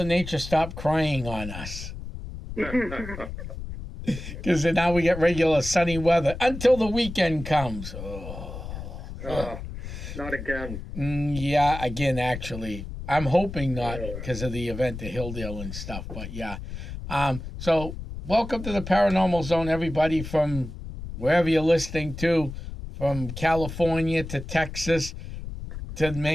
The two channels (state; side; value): noise; left; rumble, 9 dB below the sound